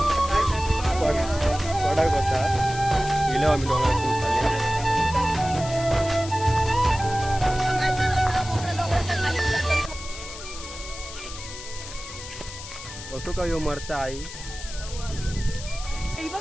होता गेलो आम्ही डोंगरातून खाली. कसं काय हो मरता आई.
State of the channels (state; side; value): noise; left; hiss, 12 dB below the sound